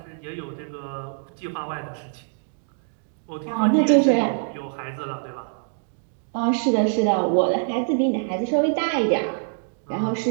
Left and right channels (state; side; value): silent; left; 62 dB below the other